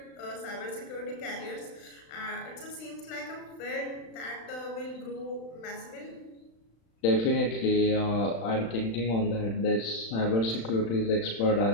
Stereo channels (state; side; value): late; right; 35 ms